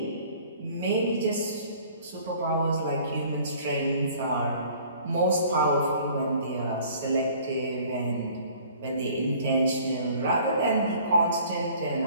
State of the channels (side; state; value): both; inverted; correlation -0.52